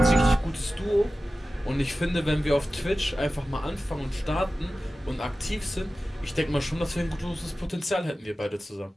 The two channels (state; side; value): normal; both; correlation 0.95